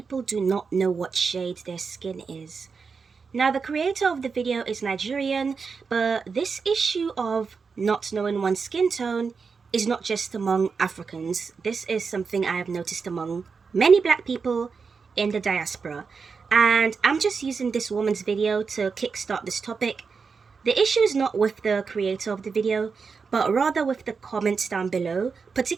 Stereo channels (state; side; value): quieter; left; 5.3 dB